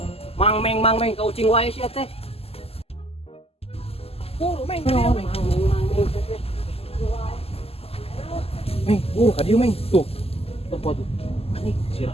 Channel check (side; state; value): right; late; 0.29 ms